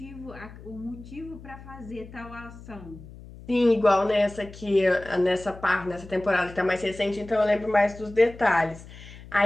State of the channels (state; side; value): noise; left; hum, 17 dB below the sound